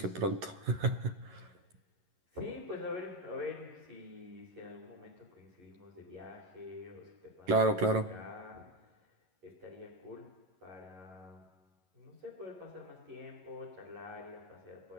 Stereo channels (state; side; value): late; left; 11 ms